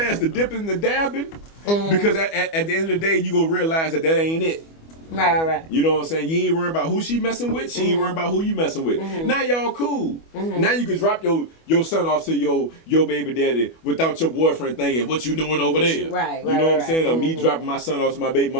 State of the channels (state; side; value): late; right; 25 ms